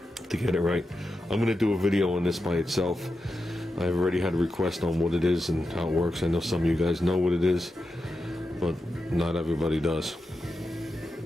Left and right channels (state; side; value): normal; both; correlation 0.89